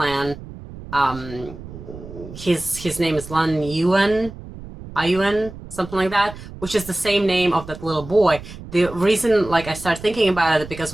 his name is Lan Yuan, Ayuan, something like that, which is the same name of that little boy. The reason, like, I started thinking about it because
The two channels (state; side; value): noise; right; rumble, 14 dB below the sound